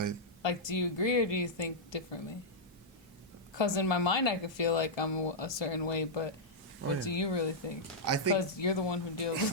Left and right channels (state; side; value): normal; both; correlation -0.09